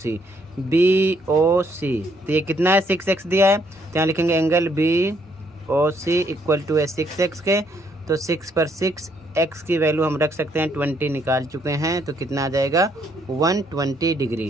बी ओ सी तो ये कितना है 6x दिया है, तो यहाँ लिखेंगे angle B O C equal to है 6x के। तो 6 पर 6 x की वैल्यू हम रख सकते हैं 20 निकाल चुके हैं, तो कितना आ जाएगा 120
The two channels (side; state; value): both; normal; correlation 0.70